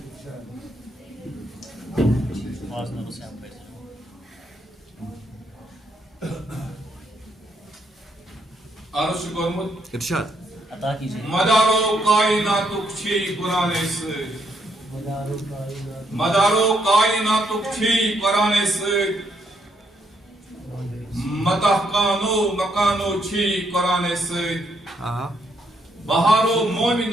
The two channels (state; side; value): normal; both; correlation 0.74